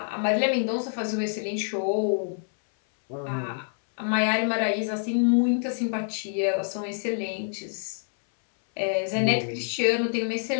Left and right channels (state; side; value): silent; right; 61 dB below the other